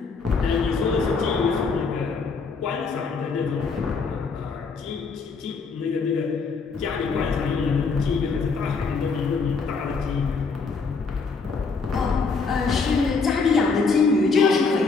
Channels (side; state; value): right; quieter; 4.6 dB